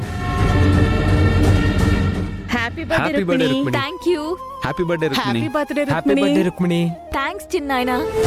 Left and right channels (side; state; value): both; identical; correlation 1.00